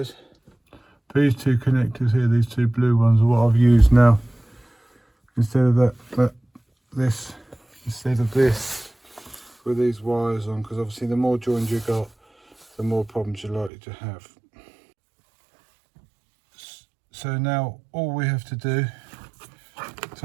These two connectors here, these two blue ones, are what I've used now instead of this with these wires on, because obviously the more joined you got, the more problems you're likely to have. So now all we have to do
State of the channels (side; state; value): left; drops out; at 13.7 s